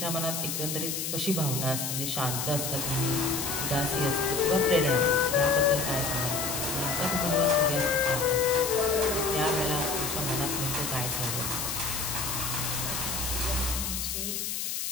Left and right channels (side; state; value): left; noise; hiss, 3 dB below the sound